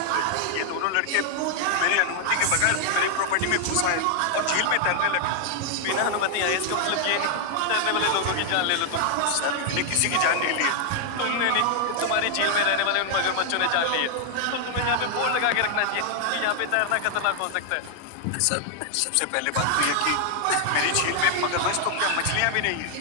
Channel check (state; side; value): different; both; correlation 0.00